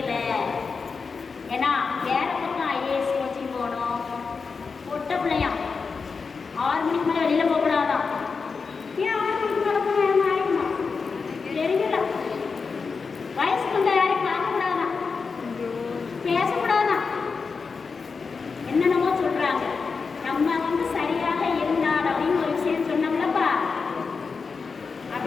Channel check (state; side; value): quieter; right; 5.0 dB